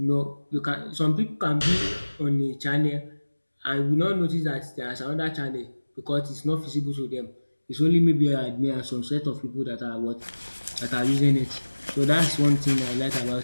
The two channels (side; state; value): both; inverted; correlation -1.00